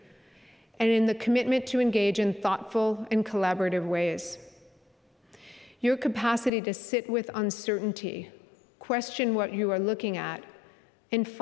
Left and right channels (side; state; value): right; drops out; at 6.5 s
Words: and in the commitment to engage in thoughtful and collaborative ways. Your capacity to sit with uncertainty, question what you are looking at, and